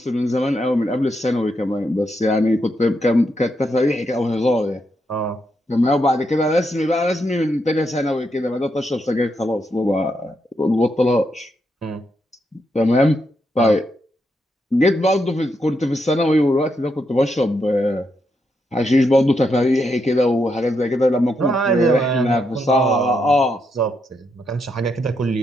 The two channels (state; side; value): normal; both; correlation 0.81